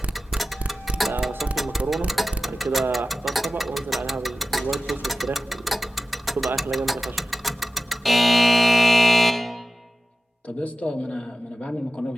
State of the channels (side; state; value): both; normal; correlation 0.94